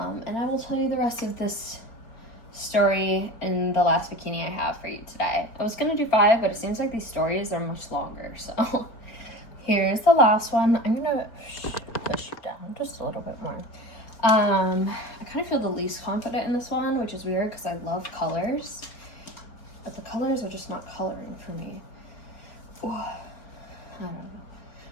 I will tell you the rest of this story in the last bikini I have for you today. I was gonna do 5, but it seems like these stories are much longer. So here's the last one. I'm gonna push you down just a little bit more. I kind of feel the least confident in this one, which is weird because I love colors, but the colors are just not coloring for me. Ooh, I don't know.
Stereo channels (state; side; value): late; right; 4.5 ms